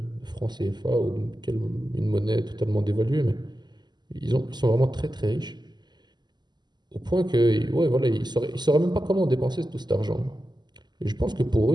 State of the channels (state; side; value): late; left; 0.21 ms